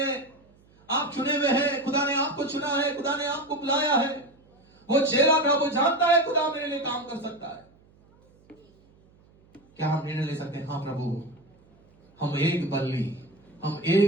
आप चुने हुए हैं। खुदा ने आपको चुना है, खुदा ने आपको बुलाया है। वो चेला था, वो जानता है खुदा मेरे लिए काम कर सकता है। क्या हम निर्णय ले सकते हैं? हाँ प्रभु, हम एक बल्ली,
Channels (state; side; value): noise; right; hum, 30 dB below the sound